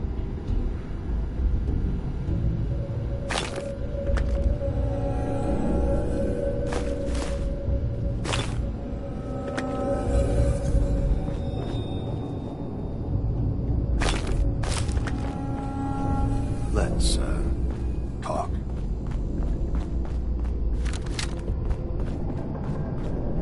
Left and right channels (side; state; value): both; identical; correlation 1.00